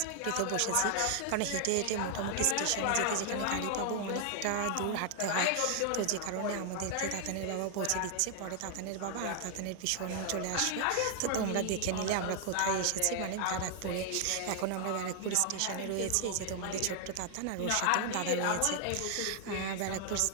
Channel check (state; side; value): different; both; correlation 0.00